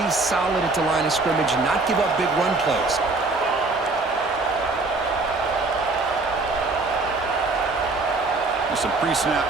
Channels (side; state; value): left; quieter; 3.5 dB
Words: solid at the line of scrimmage and not give up big run plays. Some pre-snap